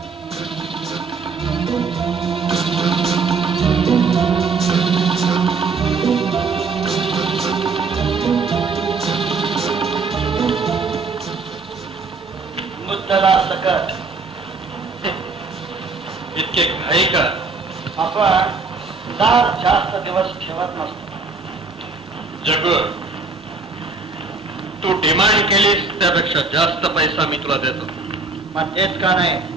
मुद्दला सकट. इतके घाई का? आपण दार जास्त दिवस ठेवत नसतो. जग, तू डिमांड केलीस त्यापेक्षा जास्त पैसा मी तुला देतो. मग तेच का नाही?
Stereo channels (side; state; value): left; quieter; 4.2 dB